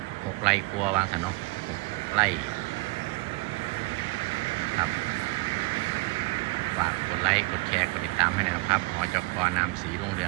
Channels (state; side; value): quieter; left; 23.2 dB